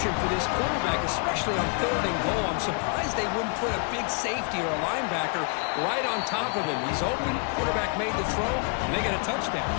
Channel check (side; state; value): right; quieter; 37.8 dB